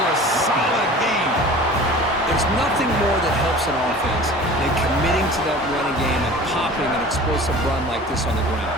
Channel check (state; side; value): normal; both; correlation 0.41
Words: a solid game. There's nothing more that helps an offense than committing to that running game and popping an explosive run like this on the ground.